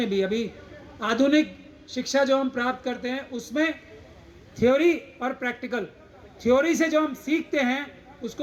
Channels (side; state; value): both; identical; correlation 1.00